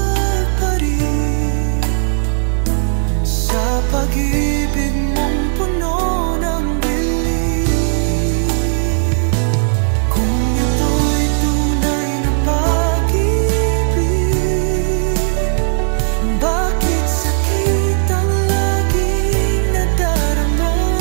pa rin sa pag-ibig mong puno ng dilim? Kung ito'y tunay na pag-ibig, bakit sakit ang laging nadarama?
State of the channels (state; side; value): silent; left; digital silence